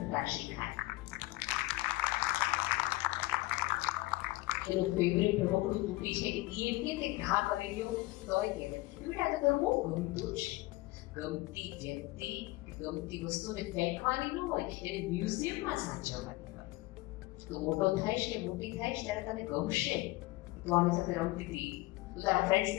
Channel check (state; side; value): quieter; right; 20.4 dB